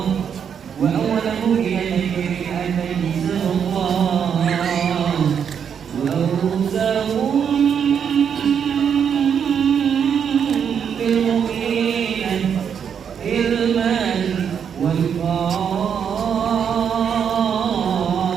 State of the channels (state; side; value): quieter; left; 7.6 dB